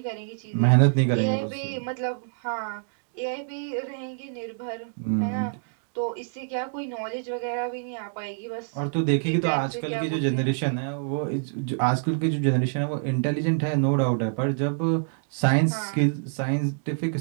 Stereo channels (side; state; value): left; silent; digital silence